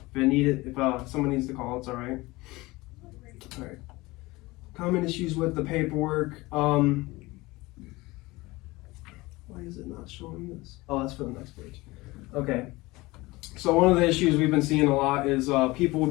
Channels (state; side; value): quieter; right; 21.4 dB